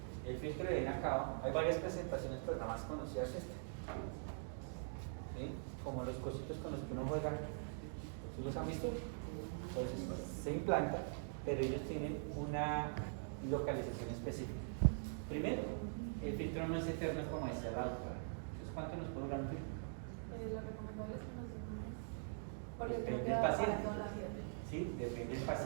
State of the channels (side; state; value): left; silent; digital silence